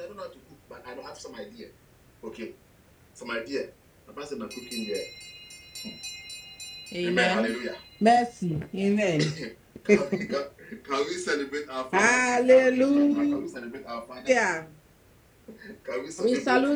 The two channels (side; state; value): both; identical; correlation 1.00